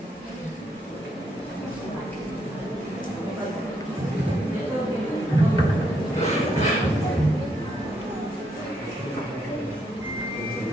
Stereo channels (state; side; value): normal; both; correlation 0.76